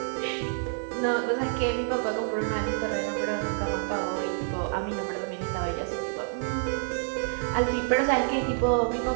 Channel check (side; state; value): left; silent; 59 dB below the other